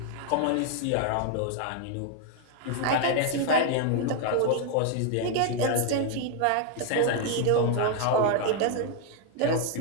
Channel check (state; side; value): different; both; correlation 0.00